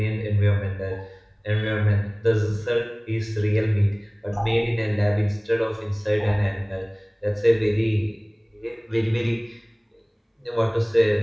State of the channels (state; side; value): identical; both; correlation 1.00